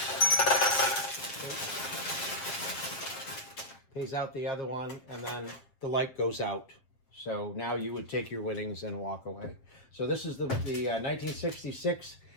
Pays out the other one, and then the light goes out. So now you would take your winnings and walk away. So this is the 1966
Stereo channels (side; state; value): right; late; 7.8 ms